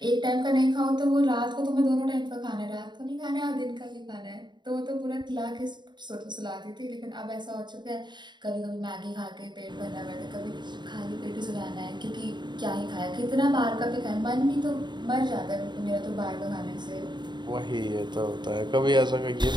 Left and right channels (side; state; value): left; late; 0.22 ms